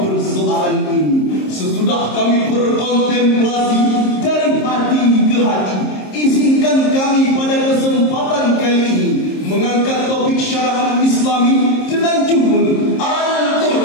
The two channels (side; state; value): right; late; 26 ms